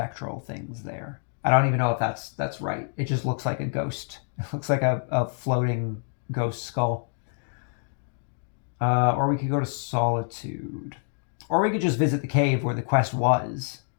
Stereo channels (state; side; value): silent; right; digital silence